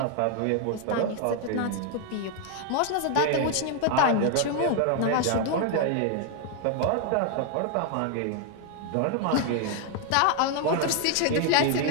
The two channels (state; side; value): different; both; correlation 0.00